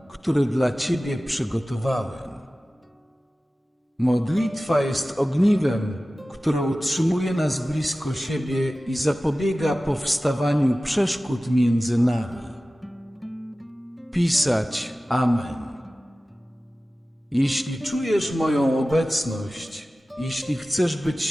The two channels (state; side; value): normal; both; correlation 0.96